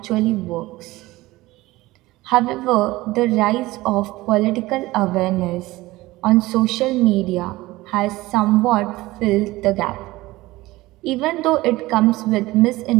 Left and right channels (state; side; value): quieter; left; 19.0 dB